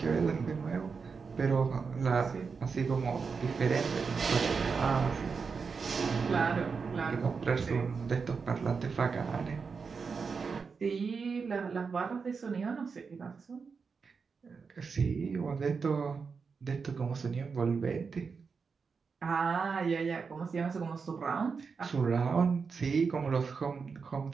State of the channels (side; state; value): left; quieter; 5.3 dB